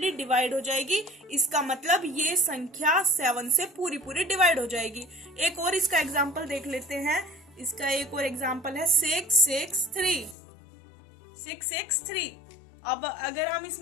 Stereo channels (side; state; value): right; drops out; at 10.4 s